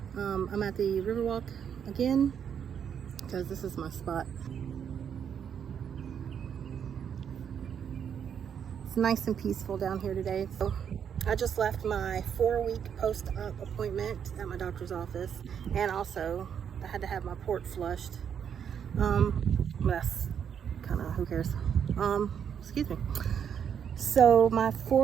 I'm at the Riverwalk again because this is my spot. It's nice and peaceful down here today. So I just left my 4-week post-op appointment at my doctor's office, and also I had to have my port flushed. That's kind of, who cares? Excuse me. So my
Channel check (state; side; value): quieter; left; 8.0 dB